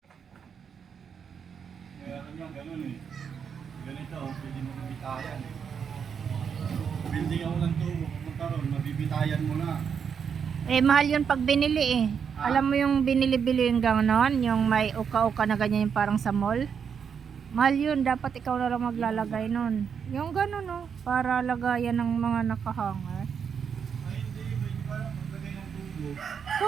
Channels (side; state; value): left; quieter; 7.0 dB